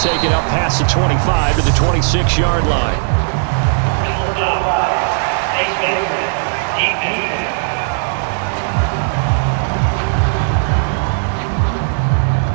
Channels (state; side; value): silent; left; digital silence